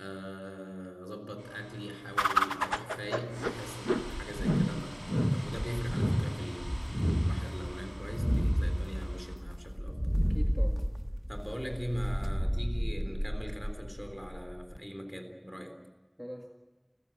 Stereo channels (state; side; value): identical; both; correlation 1.00